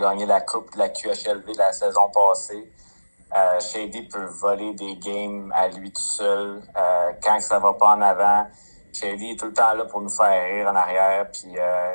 la coupe de la QHLV la saison passée. Shady peut voler des games à lui tout seul. Quand ça va pas en avant, Shady est tout le temps là pour nous faire rire en arrière. Puis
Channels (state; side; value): inverted; both; correlation -1.00